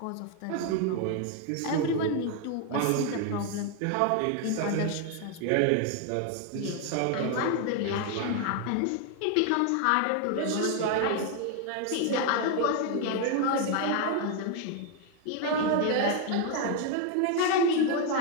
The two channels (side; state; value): both; different; correlation 0.01